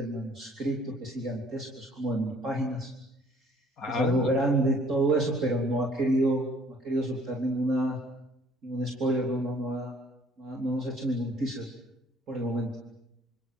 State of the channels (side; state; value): both; normal; correlation 0.58